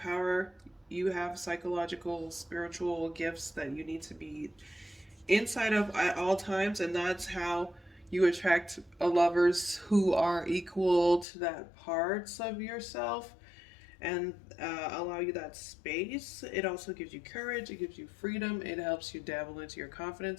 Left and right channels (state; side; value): drops out; right; at 11.2 s